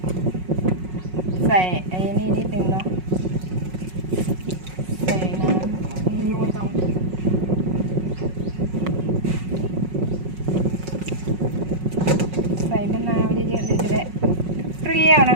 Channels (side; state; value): left; late; 5.4 ms